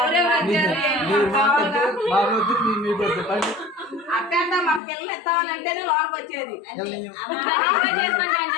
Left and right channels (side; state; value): right; drops out; at 4.8 s